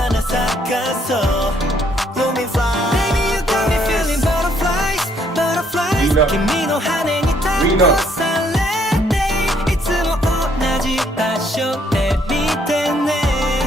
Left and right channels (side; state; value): both; normal; correlation 0.68